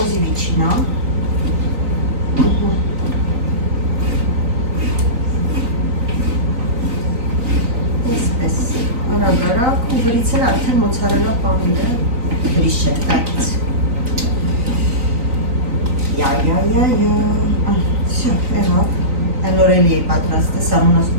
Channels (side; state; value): left; late; 3.9 ms